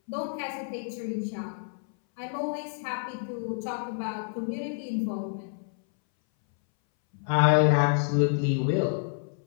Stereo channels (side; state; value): right; silent; 59 dB below the other